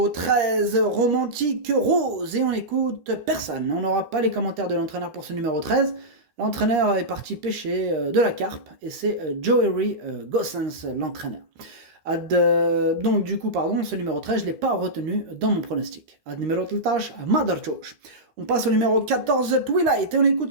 13, Romantique Rose, et on écoute personne. On n'aura pas les commentaires de l'entraîneur pour ce numéro 13. L'entraîneur est parti pêcher de la carpe, et c'est Joey Gossens, l'entraîneur. Donc du coup, ce numéro 13, je ne l'ai pas retenu dans mon pronostic. Ad numéro 13, Madarchosh. On passe au numéro 14, Twilight, et on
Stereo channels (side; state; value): left; late; 13 ms